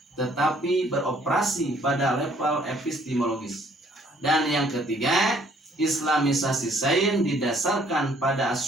tetapi beroperasi pada level epistemologis. Dan yang ketiga, Islamisasi sains didasarkan pada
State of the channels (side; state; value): both; normal; correlation 0.62